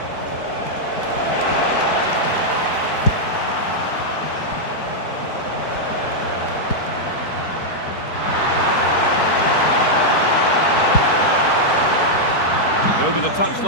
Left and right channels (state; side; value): late; right; 4.6 ms